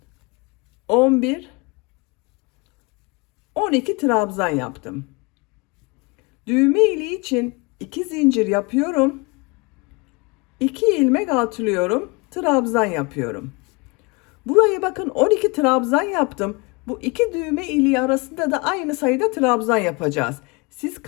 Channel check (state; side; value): quieter; right; 28.0 dB